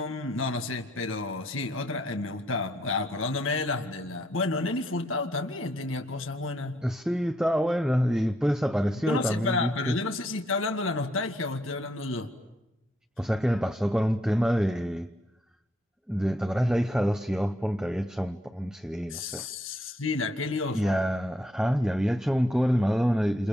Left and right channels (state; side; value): normal; both; correlation 0.73